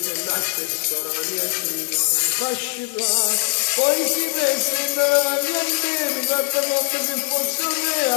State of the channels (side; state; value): right; silent; 65 dB below the other